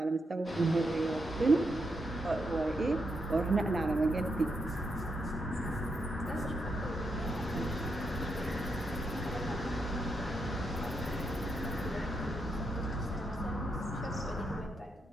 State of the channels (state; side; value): normal; both; correlation 0.82